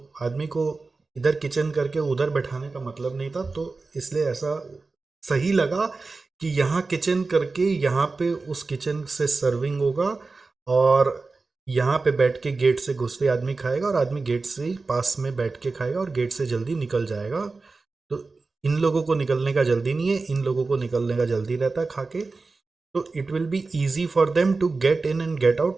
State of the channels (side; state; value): left; quieter; 3.9 dB